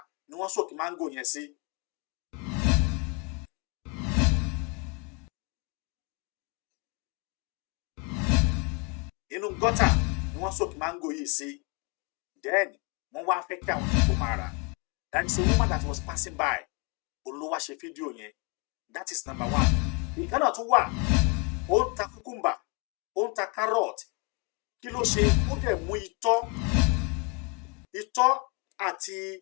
ni wọ́n soak mango yẹn sí. Inú gọ́tà ni wọ́n soak mango yìí sí. Then wọ́n wá fẹ́ kí àwọn èèyàn máa rà. That is a woman that was passing by. Olówó ṣe fídíò yẹn. That is number one. Ìkànnà tún wà. Ó ń ta cucumber. Ó ń ta carrot. Kí ló ṣe ó dẹ̀ mú itọ́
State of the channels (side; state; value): right; quieter; 31.3 dB